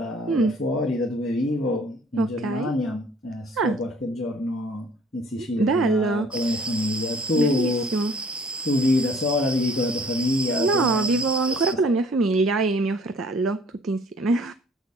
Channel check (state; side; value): normal; both; correlation 0.55